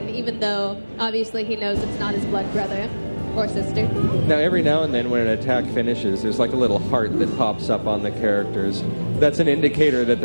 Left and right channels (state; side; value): inverted; both; correlation -1.00